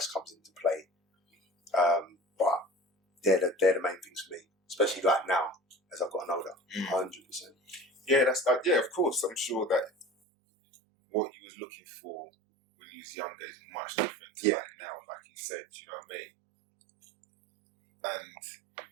comes into play. But they're the main things for me, especially like now as I've gotten older. 100%. Yeah, that's of course. I'm sure that what you was looking for when you was younger is much different to like now, like you said. You know what I mean? And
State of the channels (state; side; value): drops out; left; at 10.1 s